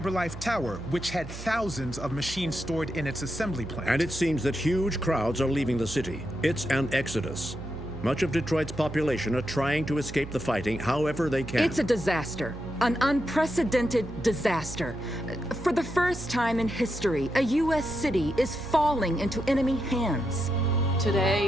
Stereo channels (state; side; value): noise; right; hum, 12 dB below the sound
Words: Tower, which had thousands of machines stored in its assembly plant. And it seems that huge crowds are leaving the city. It's an exodus. Much of Detroit's population are trying to escape the fighting however they can. It's a disaster. An unprecedented disaster. For the first time in history, a U.S. city is falling into enemy hands.